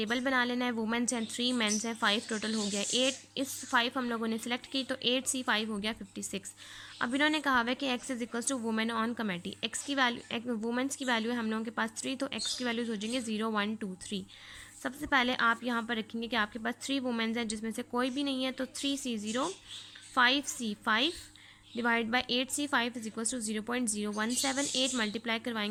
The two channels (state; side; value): identical; both; correlation 1.00